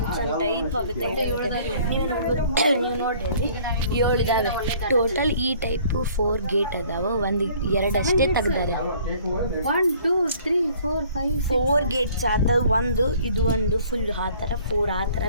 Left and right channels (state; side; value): inverted; both; correlation -0.56